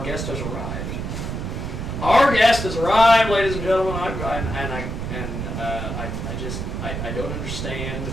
guest has arrived. Our guest has arrived, ladies and gentlemen, I don't understand.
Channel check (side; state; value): right; noise; rumble, 4 dB below the sound